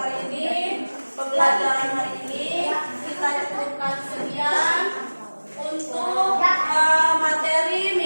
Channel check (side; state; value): both; inverted; correlation -1.00